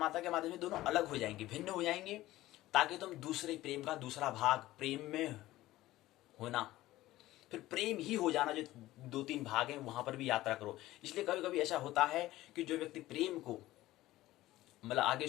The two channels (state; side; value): quieter; right; 16.4 dB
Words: के माध्यम से दोनों अलग हो जाएंगे, भिन्न हो जाएंगे, ताकि तुम दूसरे प्रेम का दूसरा भाग, प्रेम में होना, फिर प्रेम ही हो जाना, जो 2-3 भाग हैं वहां पर भी यात्रा करो। इसलिए कभी कभी ऐसा होता है कि जो व्यक्ति प्रेम को मतलब आगे